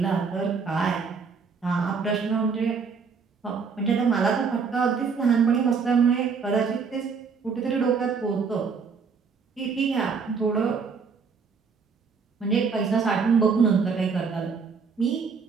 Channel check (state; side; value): quieter; left; 5.5 dB